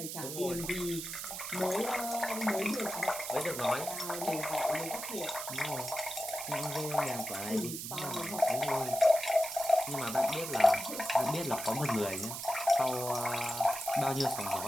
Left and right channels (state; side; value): noise; right; hiss, 6 dB below the sound